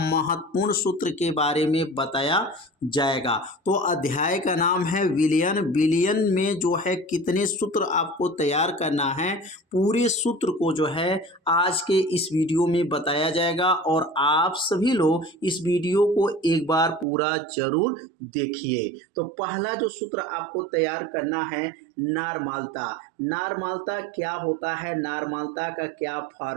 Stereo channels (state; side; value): drops out; left; at 17.1 s